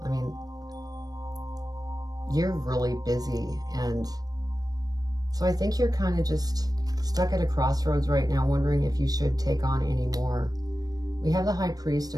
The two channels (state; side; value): late; left; 0.18 ms